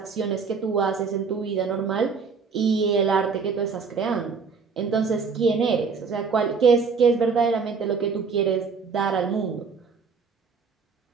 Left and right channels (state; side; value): quieter; left; 5.3 dB